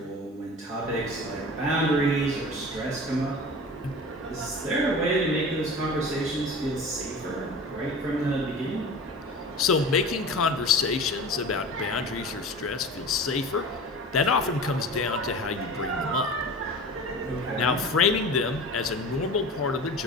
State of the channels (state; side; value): normal; both; correlation 0.35